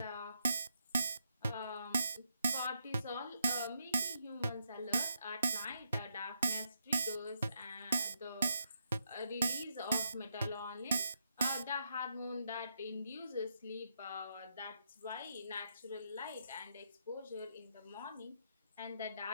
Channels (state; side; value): inverted; both; correlation -0.79